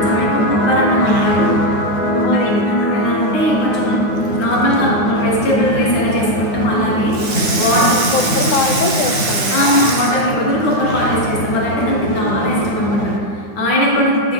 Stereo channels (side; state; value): right; late; 9.6 ms